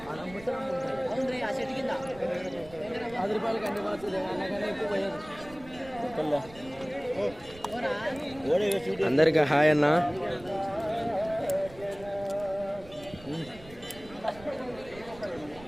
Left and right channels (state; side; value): noise; right; rumble, 19 dB below the sound